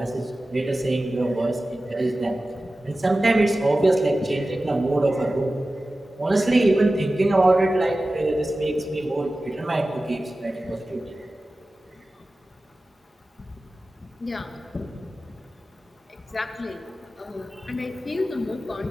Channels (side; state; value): both; normal; correlation 0.95